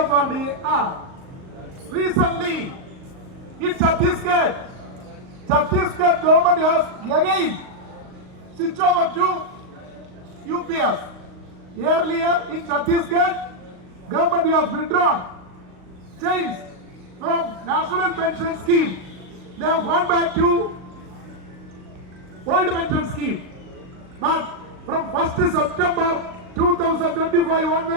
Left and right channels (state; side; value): late; left; 38 ms